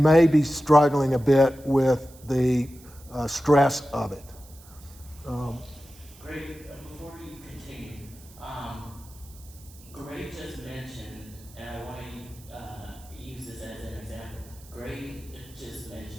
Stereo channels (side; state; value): right; noise; hiss, 23 dB below the sound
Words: be struggling a bit with the stress of it. Great. Before you continue, Gray just mentioned, and I want to use this as an example. Gray just